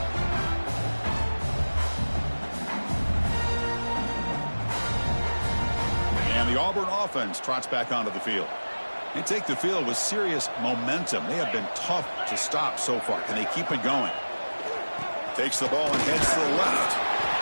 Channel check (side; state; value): both; inverted; correlation -1.00